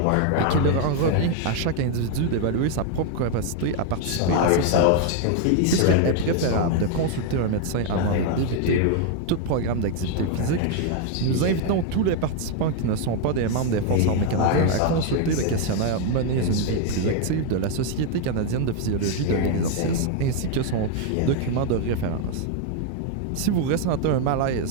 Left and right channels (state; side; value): different; both; correlation 0.00